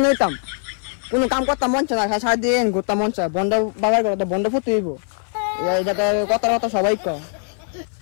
নিতাম কোনো কাম করতাম মন চায় না সারাদিন ঘুরতাম মন চায় বন্ড বাবার ঘরে তো বন্ড ফুটে হইব যাতে কথা কথা সবাই কয়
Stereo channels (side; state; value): right; silent; 58 dB below the other